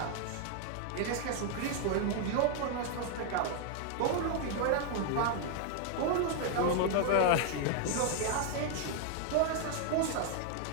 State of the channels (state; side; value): different; both; correlation 0.00